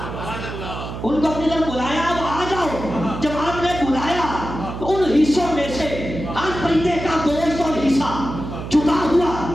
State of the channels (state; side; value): noise; right; hum, 8 dB below the sound